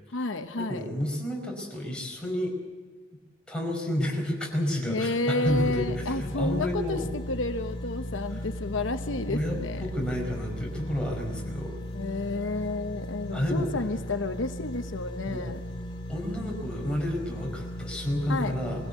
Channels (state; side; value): normal; both; correlation 0.54